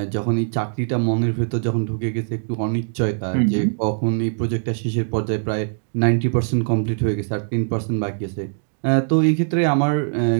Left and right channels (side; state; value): left; silent; digital silence